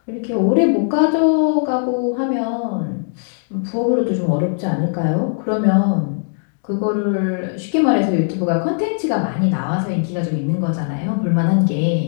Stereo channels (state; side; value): silent; right; digital silence